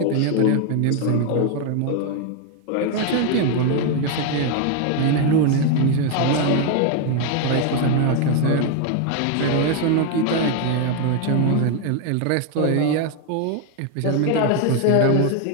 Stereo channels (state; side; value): different; both; correlation 0.01